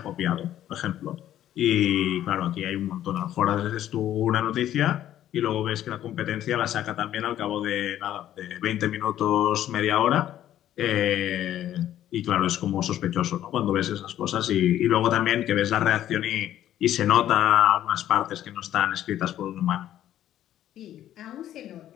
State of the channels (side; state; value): right; quieter; 12.0 dB